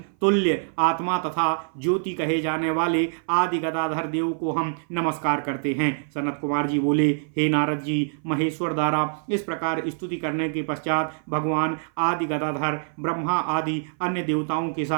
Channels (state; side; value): silent; left; 57 dB below the other